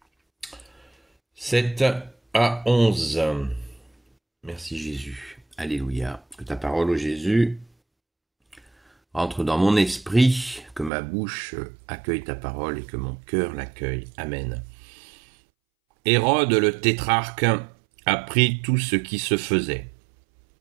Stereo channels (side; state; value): left; drops out; at 10.9 s